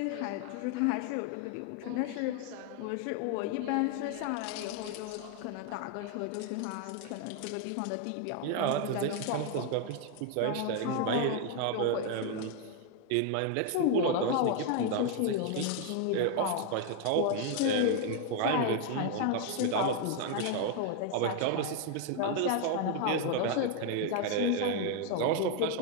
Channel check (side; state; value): both; different; correlation 0.01